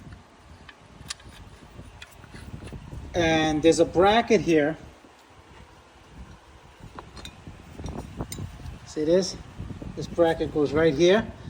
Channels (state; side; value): identical; both; correlation 1.00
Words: And there's a bracket here. See this? This bracket goes right here.